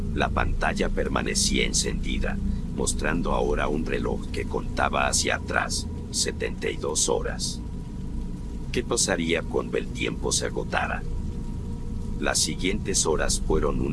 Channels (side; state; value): both; identical; correlation 1.00